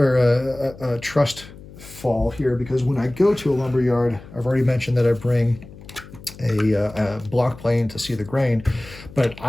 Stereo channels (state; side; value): noise; left; hum, 18 dB below the sound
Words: a trust fall here, because when I go to a lumber yard, I've already mentioned that I bring a block plane to see the grain, but